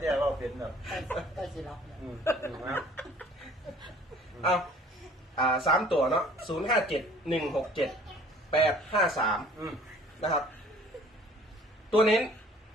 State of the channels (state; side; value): normal; both; correlation 0.53